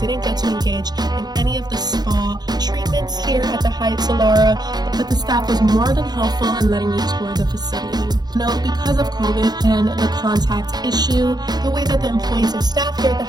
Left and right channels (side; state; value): left; late; 0.20 ms